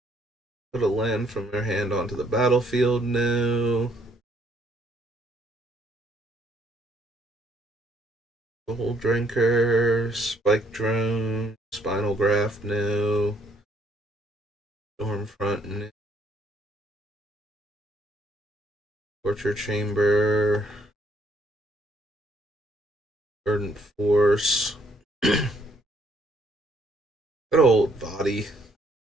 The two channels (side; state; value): both; normal; correlation 0.68